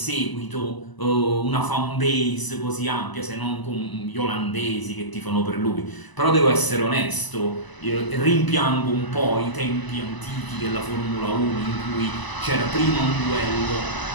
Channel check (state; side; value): late; right; 1.0 ms